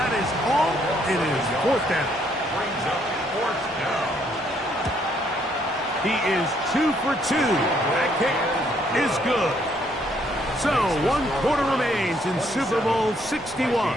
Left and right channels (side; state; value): both; normal; correlation 0.69